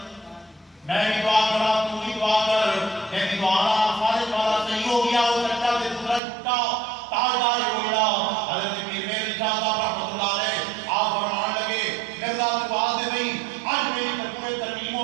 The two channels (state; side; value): drops out; left; at 6.2 s